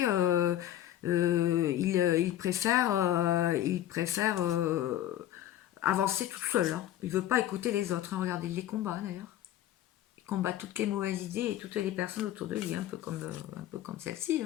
il préfère avancer tout seul, hein. Il veut pas écouter les autres, hein. Regardez les combats d'ailleurs. Il combat toutes les mauvaises idées et toutes les personnes autour de lui, un peu comme celle-ci,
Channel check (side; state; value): right; quieter; 12.4 dB